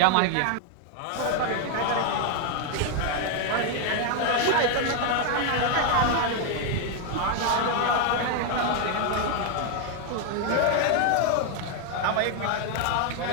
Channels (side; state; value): both; different; correlation 0.01